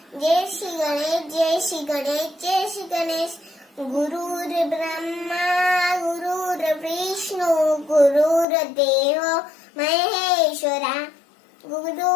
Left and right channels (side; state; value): right; drops out; at 8.5 s